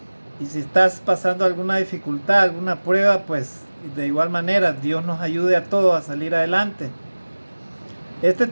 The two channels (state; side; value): inverted; both; correlation -1.00